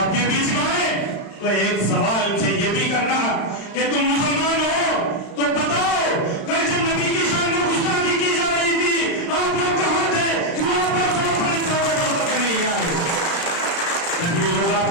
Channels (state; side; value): late; right; 35 ms